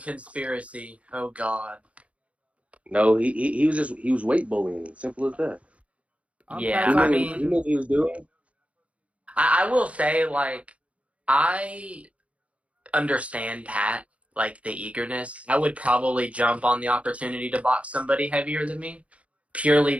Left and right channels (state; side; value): late; left; 0.064 ms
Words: conspiracy. Oh God. no, he was weight bullying. Simple as that. Yeah, He I knew mean, what he was doing. I will say, like, I understand Pat, like the eagerness. I would probably jump on the opportunity to box somebody heavier than me, purely